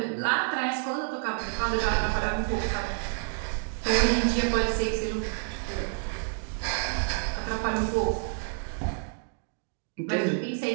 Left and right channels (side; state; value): left; silent; 59 dB below the other